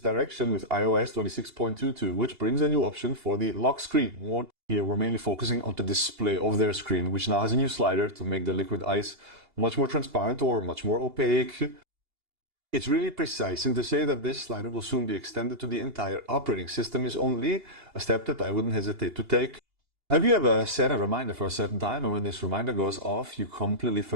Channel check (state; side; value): late; left; 2.8 ms